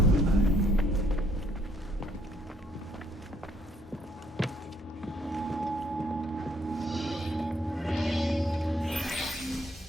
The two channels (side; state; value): both; normal; correlation 0.67